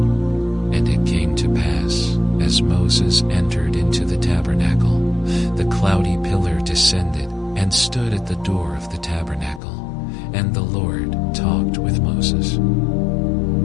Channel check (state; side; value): drops out; right; at 9.6 s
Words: And it came to pass, as Moses entered into the tabernacle, the cloudy pillar descended and stood at the door of the tabernacle, and the Lord talked with Moses.